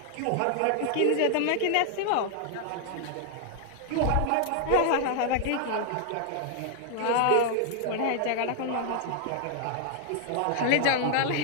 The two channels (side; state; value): both; different; correlation 0.00